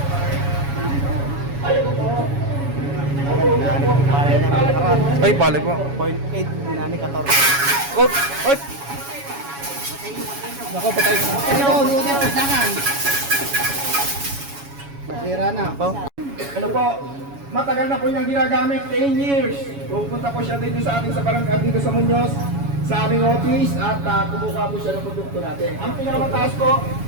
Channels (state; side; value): late; left; 7.2 ms